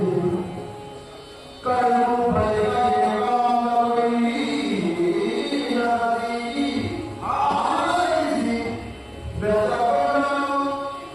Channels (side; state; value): both; identical; correlation 1.00